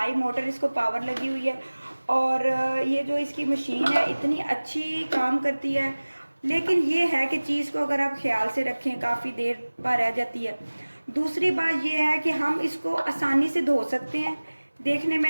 मोटर, इसको पावर लगी हुई है। और ये जो इसकी मशीन है इतनी अच्छी काम करती है, लेकिन ये है कि चीज़ को अगर आप ख्याल से रखें काफ़ी देर पर रह जाती है। दूसरी बात ये है कि हम इसको आसानी से धो सकते हैं। देखने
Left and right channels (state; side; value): inverted; both; correlation -1.00